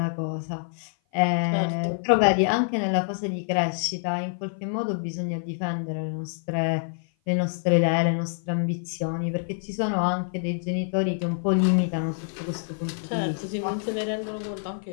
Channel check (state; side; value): silent; right; 55 dB below the other